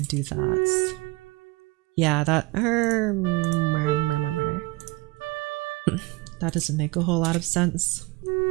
do that. Yeah, that... That doesn't make a whole lot of sense.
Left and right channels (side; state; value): left; quieter; 23.4 dB